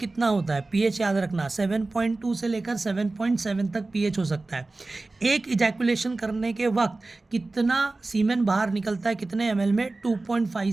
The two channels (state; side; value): quieter; left; 3.2 dB